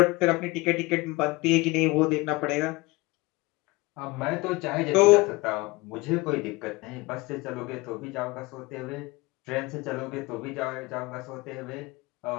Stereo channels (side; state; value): right; quieter; 22.8 dB